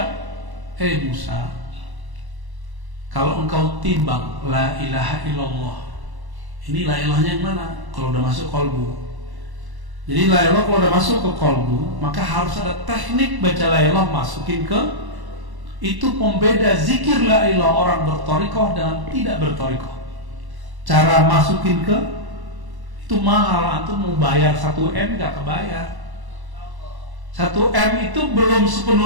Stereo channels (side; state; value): left; late; 1.1 ms